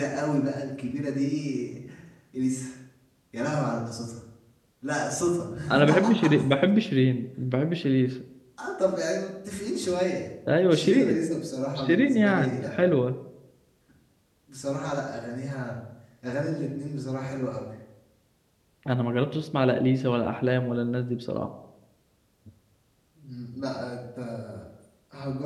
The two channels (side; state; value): both; identical; correlation 1.00